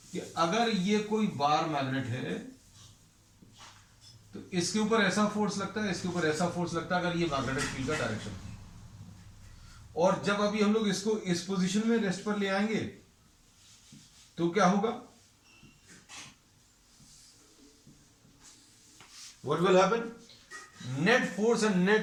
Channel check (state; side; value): identical; both; correlation 1.00